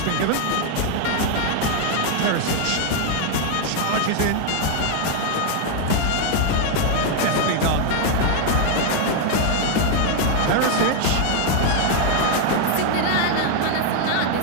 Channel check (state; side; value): different; both; correlation 0.00